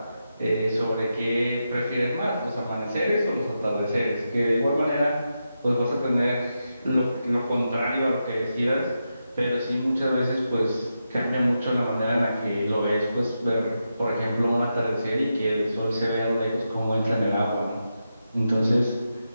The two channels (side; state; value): both; inverted; correlation -0.88